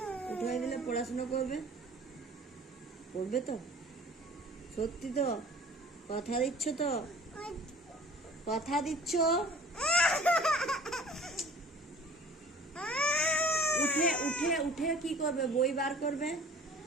উঠে দিলে পড়াশোনা করবে? পড়বে তো? সত্যি তো? কথা দিচ্ছ তো? কথা দিচ্ছ? উঠে উঠে উঠে কি করবে? বই বার করবে?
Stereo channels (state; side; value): normal; both; correlation 0.46